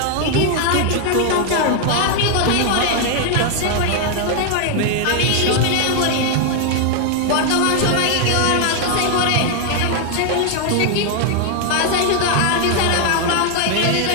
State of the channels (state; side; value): different; both; correlation 0.00